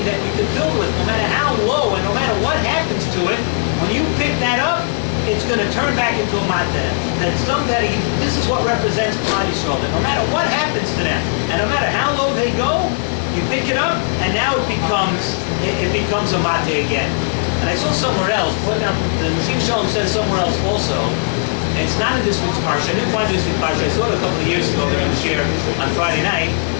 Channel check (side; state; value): right; silent; 68 dB below the other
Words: that we could build with, no matter how low and no matter what happens to it. When you pick that up, it's going to turn back into a matzah. This is what represents Klal Yisrael. That no matter what happens to them, and no matter how low they go, you pick it up, and now it becomes a matzah again. And I saw somewhere else. The Nasim Shalom says somewhere else also. And it's not in this week's parsha. I didn't find this week's parsha. I saw it a couple of years ago during the Shiur on Friday night.